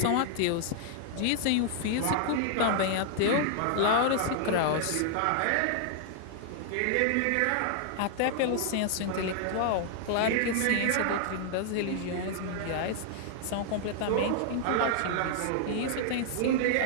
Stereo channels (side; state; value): both; different; correlation 0.00